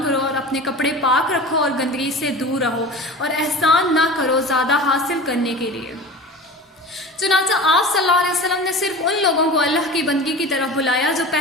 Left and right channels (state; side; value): normal; both; correlation 0.34